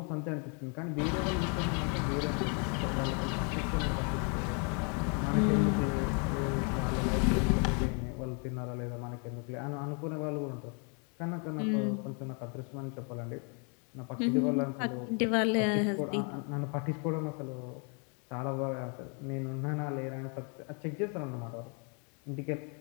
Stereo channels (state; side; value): quieter; right; 37.6 dB